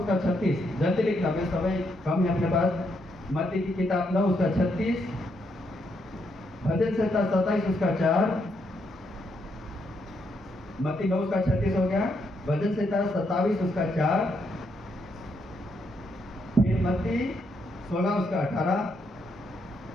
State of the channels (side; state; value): both; normal; correlation 0.77